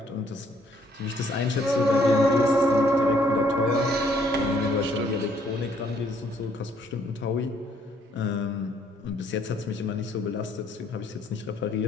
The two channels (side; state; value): both; normal; correlation 0.66